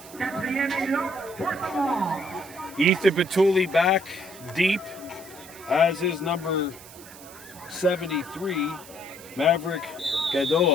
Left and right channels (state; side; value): noise; right; hiss, 18 dB below the sound